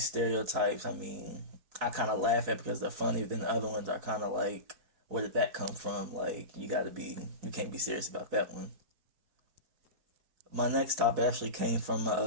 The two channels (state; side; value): late; left; 4.6 ms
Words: stereotypes, I kind of laugh at because they're funny. But then the other ones are kind of like, where did that come from? Like, you can't be serious about that one. My next topic actually came from